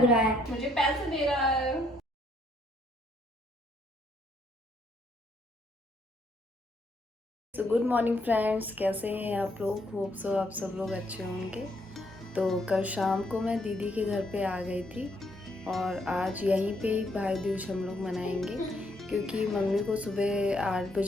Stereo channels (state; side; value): normal; both; correlation 0.71